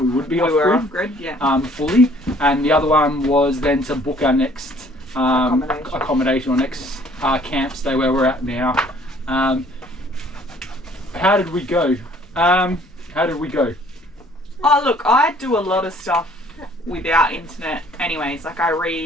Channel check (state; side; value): normal; both; correlation 0.57